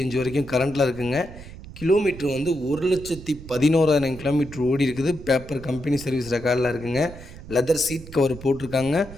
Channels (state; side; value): noise; right; rumble, 15 dB below the sound